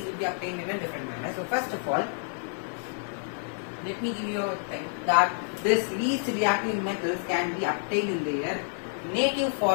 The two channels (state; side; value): silent; right; digital silence